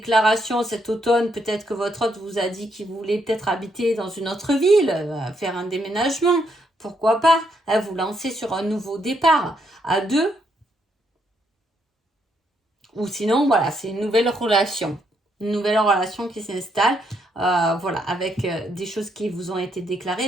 cet automne, peut-être que votre hôte vous a dit qu'il voulait peut-être habiter dans une autre ville, faire un déménagement, pourquoi pas, vous lancer sur un nouveau départ à deux. Ou sinon, voilà, c'est une nouvelle relation qui s'installe, voilà, avec des choses qui vous ont été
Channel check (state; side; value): normal; both; correlation 0.75